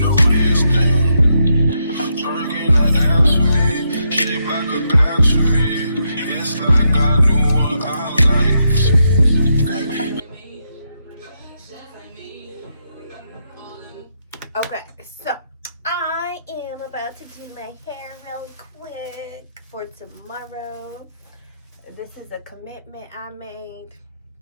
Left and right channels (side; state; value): both; inverted; correlation -0.80